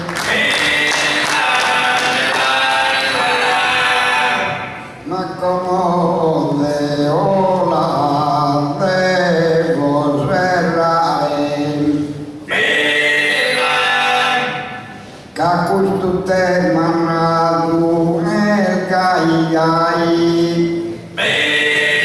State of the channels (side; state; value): both; identical; correlation 1.00